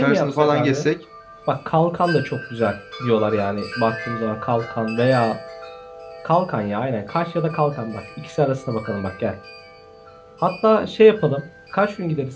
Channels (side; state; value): both; identical; correlation 1.00